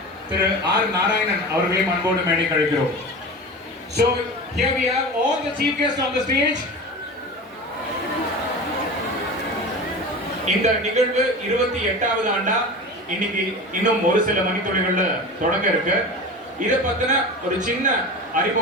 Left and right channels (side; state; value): both; normal; correlation 0.31